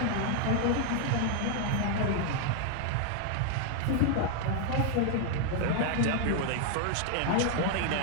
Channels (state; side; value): different; both; correlation 0.01